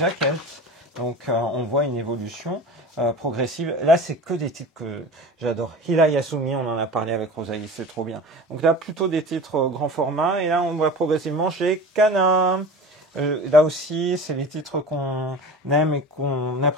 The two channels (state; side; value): normal; both; correlation 0.35